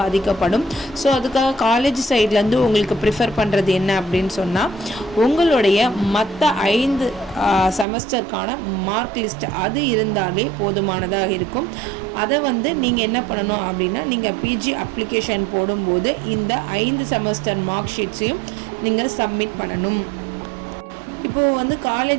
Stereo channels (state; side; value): drops out; left; at 7.9 s